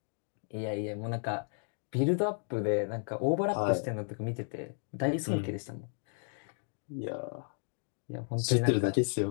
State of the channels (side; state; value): right; silent; 55 dB below the other